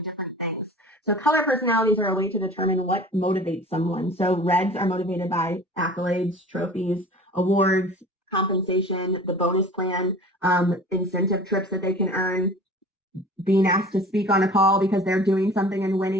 different things. So color personalities are a way to determine what motivates someone. So reds are motivated by accolades, trophies, awards, compensation, the bonus plan, incentive trips that they can earn, being asked to speak on a call because they're doing something and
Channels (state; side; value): normal; both; correlation 0.42